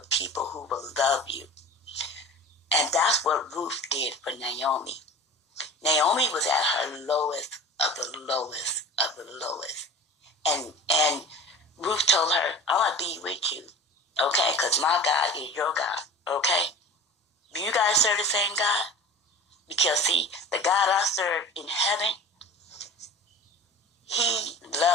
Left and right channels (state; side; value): normal; both; correlation 0.37